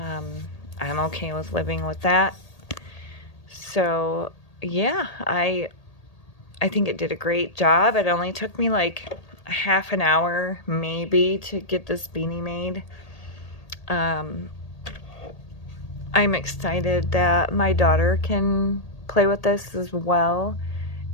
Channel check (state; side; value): late; right; 1.8 ms